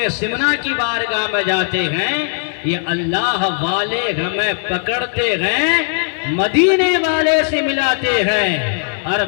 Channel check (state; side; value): silent; right; 56 dB below the other